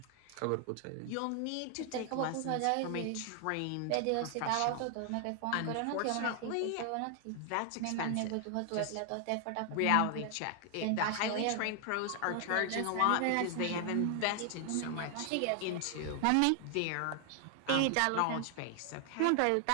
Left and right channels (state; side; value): different; both; correlation 0.00